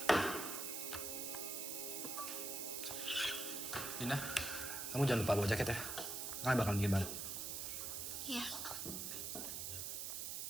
Dina, kamu jangan lupa bawa jaket ya. Kalian bakal bikin baru. Iya.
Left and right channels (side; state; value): right; noise; hiss, 3 dB below the sound